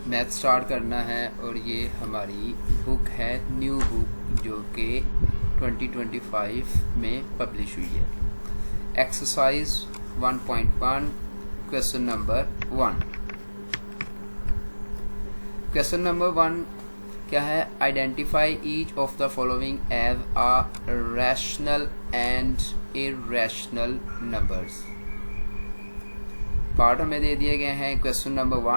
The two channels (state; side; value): inverted; both; correlation -1.00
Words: मैथ स्टार्ट करना है और ये हमारी बुक है, न्यू बुक, जो कि 2025 में पब्लिश हुई है। Exercise 1.1 question number 1। Question number 1 क्या है? Identify each of the following as a rational and irrational numbers. Part हमें दे दिए गए हैं। Question number